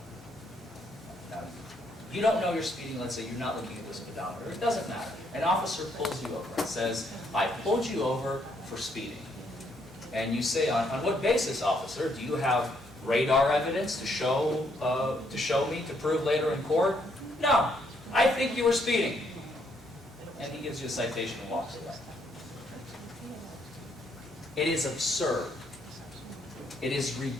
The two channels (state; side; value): noise; left; hum, 28 dB below the sound